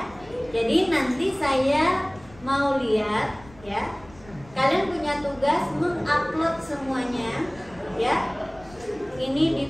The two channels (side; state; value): left; noise; rumble, 23 dB below the sound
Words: jadi nanti saya mau lihat ya, kalian punya tugas mengupload semuanya ya. Ini